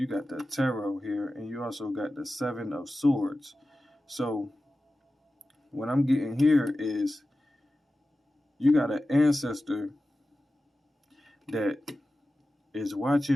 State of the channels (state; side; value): normal; both; correlation 0.94